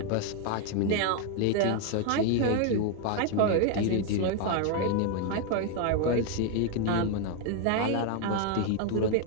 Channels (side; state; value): both; different; correlation 0.01